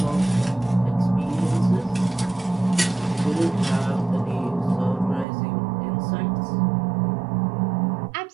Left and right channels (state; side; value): drops out; left; at 5.2 s